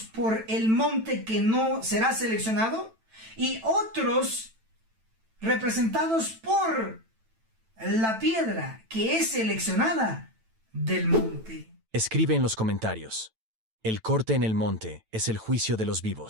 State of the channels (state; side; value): late; left; 9.0 ms